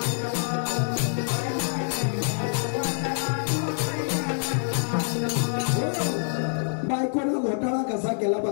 बायकोनं घोटाळा कसा केला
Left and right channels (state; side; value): silent; right; 61 dB below the other